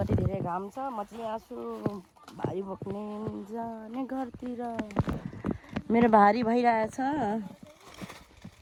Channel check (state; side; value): identical; both; correlation 1.00